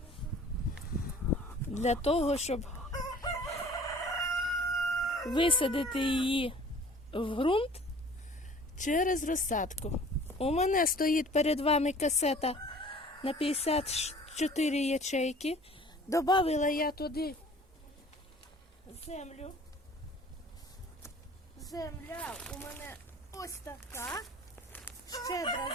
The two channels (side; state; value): both; normal; correlation 0.49